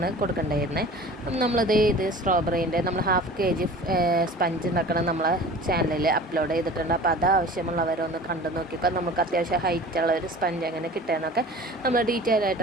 കൊടുക്കേണ്ടിയിരുന്നത്. നമ്മളത് ഇത് സ്ട്രോബെറീൻ്റെ നമ്മൾ ½ kg സ്പഞ്ച് ഉണ്ടാക്കണം നമ്മളെ ചാനലിൽ അപ്ലോഡ് ചെയ്തിട്ടുണ്ട്. അപ്പോൾ അത് ആവശ്യമുള്ളവരൊന്ന് കണ്ടു നോക്കിക്കോ. നമുക്ക് അത്യാവശ്യം ഹൈറ്റുള്ള ഒരു സ്പഞ്ച് എങ്ങനെ കിട്ടുകയെന്നൊക്കെ നമ്മൾ ഡീറ്റെയിൽ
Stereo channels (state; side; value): normal; both; correlation 0.41